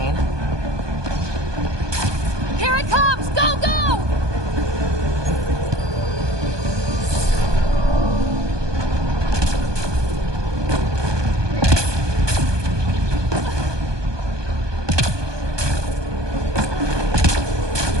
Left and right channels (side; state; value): left; late; 1.2 ms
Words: Here it comes! Go, go!